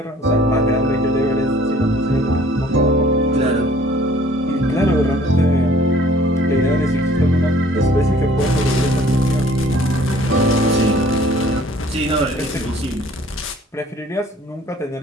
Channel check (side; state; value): both; normal; correlation 0.54